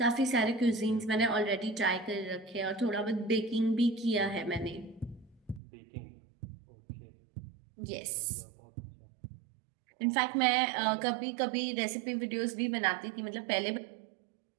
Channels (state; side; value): drops out; left; at 5.6 s